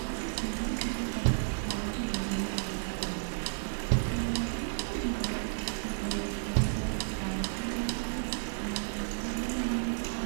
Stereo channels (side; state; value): left; silent; digital silence